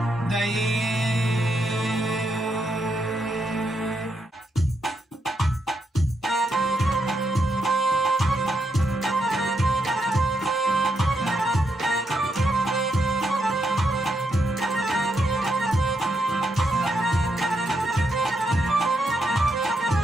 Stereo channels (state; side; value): normal; both; correlation 0.80